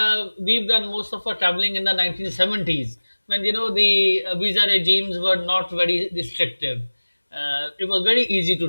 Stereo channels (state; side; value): inverted; both; correlation -1.00